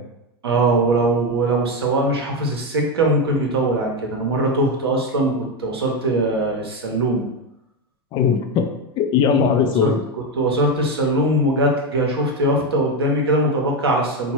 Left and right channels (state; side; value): normal; both; correlation 0.10